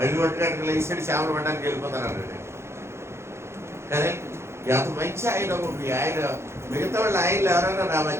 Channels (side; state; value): left; late; 0.13 ms